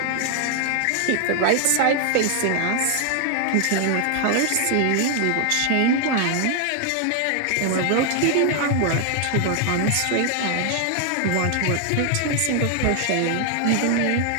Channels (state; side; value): different; both; correlation 0.00